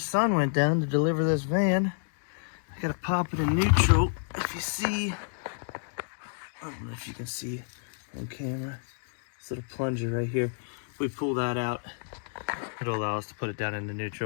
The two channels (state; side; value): silent; right; digital silence